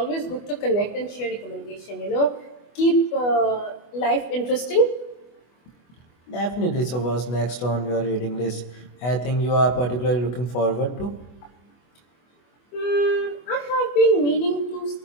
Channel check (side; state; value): right; late; 24 ms